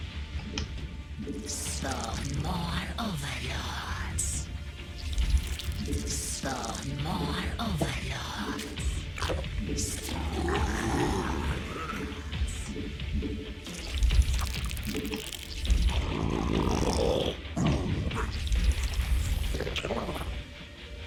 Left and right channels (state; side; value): identical; both; correlation 1.00